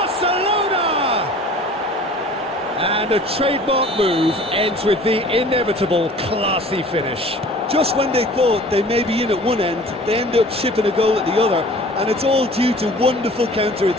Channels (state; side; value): normal; both; correlation 0.46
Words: And a trademark move ends with the inevitable classy finish. Just when they thought they may be in at one end, they end up shipping a goal at the other, and it's all due to wonderful